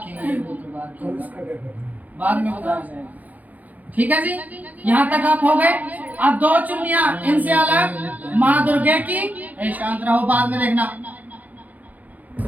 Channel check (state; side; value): late; left; 0.078 ms